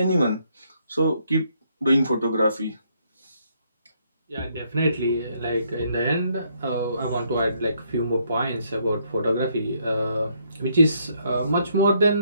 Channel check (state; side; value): inverted; both; correlation -0.72